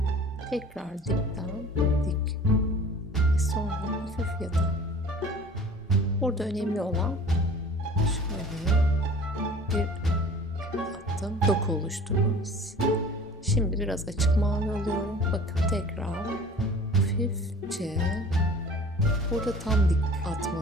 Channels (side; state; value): both; normal; correlation 0.45